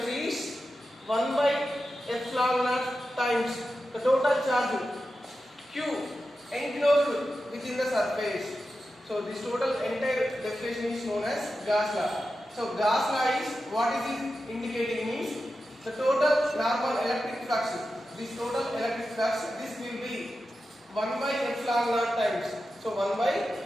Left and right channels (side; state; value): both; normal; correlation 0.91